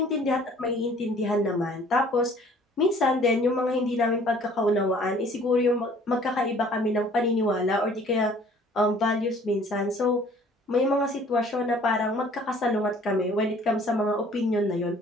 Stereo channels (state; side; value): normal; both; correlation 0.54